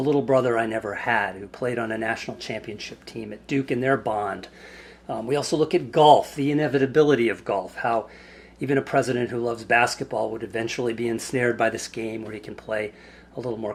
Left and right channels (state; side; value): identical; both; correlation 1.00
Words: brother I never had, who played on a national championship team at Duke in their bond. We also look at golf, the inevitability of golf, how even a president who loves basketball would eventually be ensnared by this game where he can play a little more